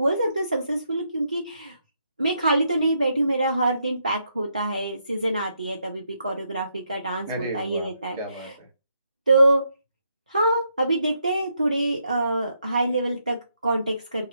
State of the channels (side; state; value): both; inverted; correlation -0.78